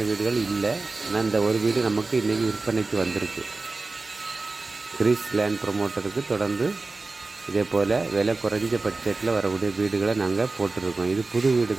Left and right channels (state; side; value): quieter; left; 3.6 dB